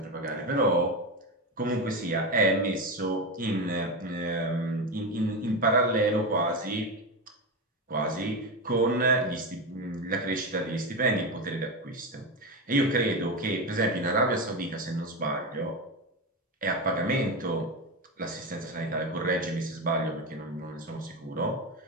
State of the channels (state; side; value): normal; both; correlation 0.17